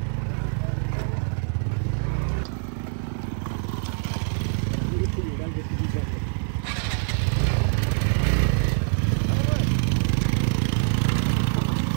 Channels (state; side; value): silent; left; digital silence